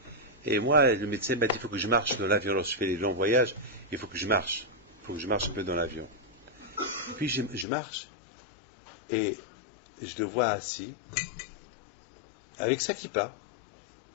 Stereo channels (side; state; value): right; drops out; at 7.7 s